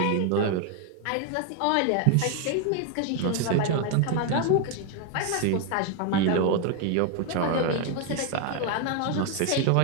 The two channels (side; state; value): both; different; correlation 0.01